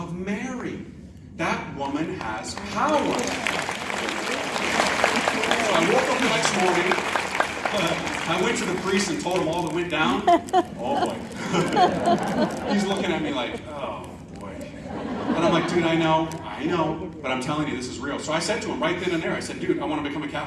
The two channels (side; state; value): both; identical; correlation 1.00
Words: Mary. That woman has power. So I woke up the next morning. I went to the priest and told him all that went down. Oh, boy. He's looking at me like, oh, boy. And I'm like, dude, I know, but I'm telling you, this is real. So I said to him right then and there, I said, dude, I want to become a